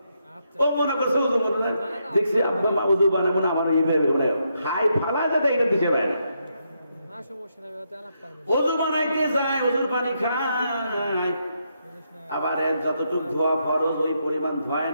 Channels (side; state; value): both; inverted; correlation -0.79